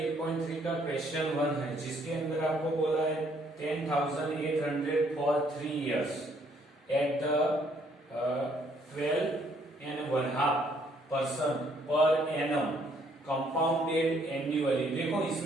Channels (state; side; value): normal; both; correlation 0.66